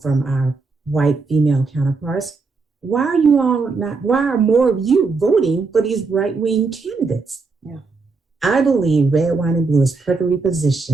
from our white female counterparts, why are more of you voting for these right-wing candidates? Yeah. I believe Red, Wine, and Blue is perfectly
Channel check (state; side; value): quieter; left; 4.2 dB